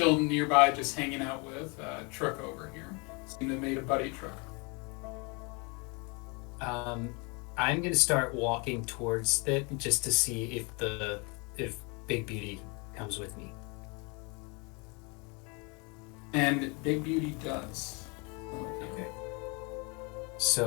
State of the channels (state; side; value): quieter; right; 30.9 dB